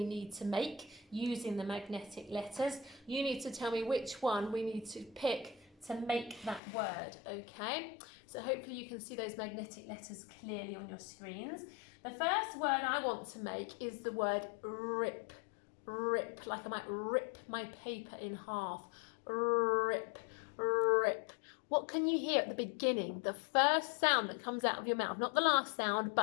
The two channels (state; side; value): drops out; right; at 6.6 s